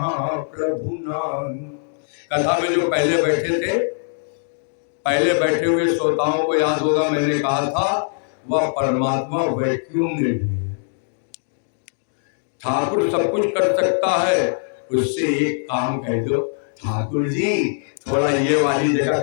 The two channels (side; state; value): right; silent; digital silence